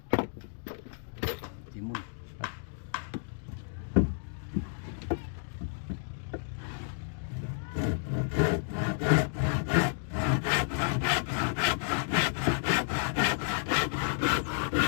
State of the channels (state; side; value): silent; right; digital silence